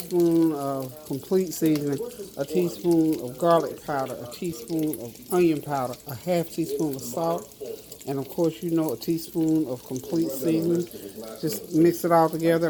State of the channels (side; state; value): both; identical; correlation 1.00